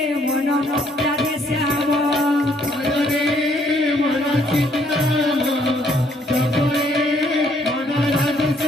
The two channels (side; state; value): both; normal; correlation 0.67